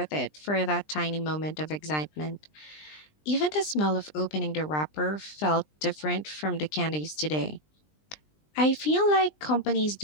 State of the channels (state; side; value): late; right; 20 ms